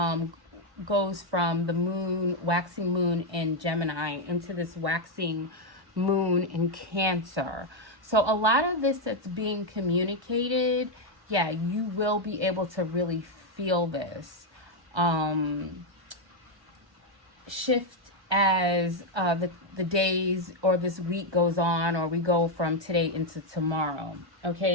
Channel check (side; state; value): left; late; 1.2 ms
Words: goes from the moon, waxing moon in Gemini, into this waxing moon in Cancer. So a lot of this that's being communicated, yeah, you will be able to really feel this shift as the days or this week goes on, or we go from today into tomorrow.